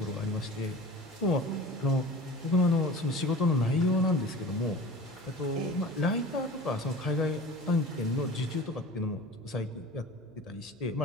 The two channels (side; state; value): left; noise; hum, 28 dB below the sound